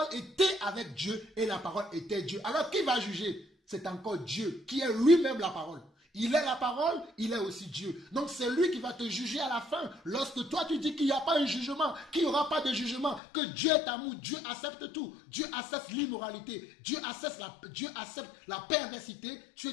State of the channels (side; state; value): right; drops out; at 13.2 s